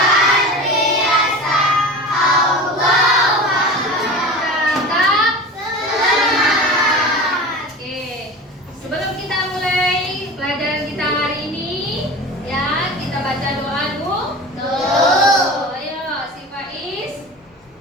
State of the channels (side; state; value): both; normal; correlation 0.33